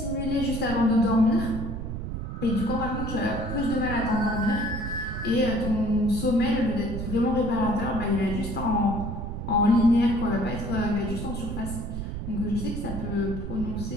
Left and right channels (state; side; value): noise; right; rumble, 5 dB below the sound